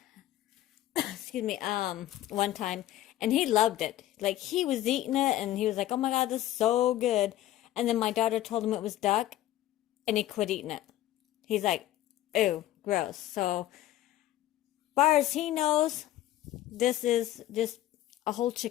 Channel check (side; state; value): right; quieter; 14.0 dB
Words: excuse me, one time, and he loved it. Like, he was eating it, and he was like, oh my God, this is so good. And then my daughter told him it was duck, and he quit eating it. He's like, ew, gross. So, far as he knows, this is just a whole